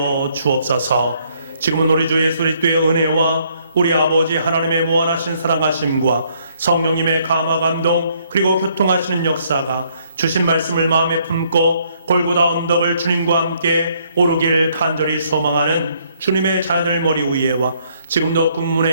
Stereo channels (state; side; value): inverted; both; correlation -0.68